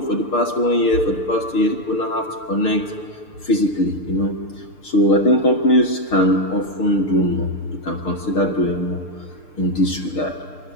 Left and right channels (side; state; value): right; late; 6.7 ms